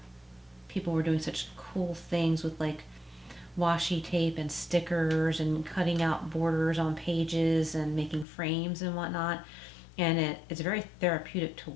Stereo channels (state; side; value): drops out; right; at 8.2 s